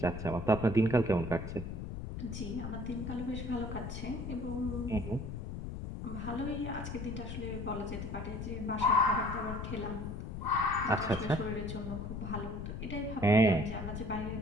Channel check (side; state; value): left; noise; rumble, 6 dB below the sound